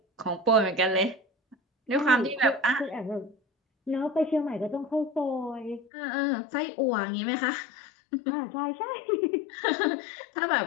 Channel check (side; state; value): right; drops out; at 5.9 s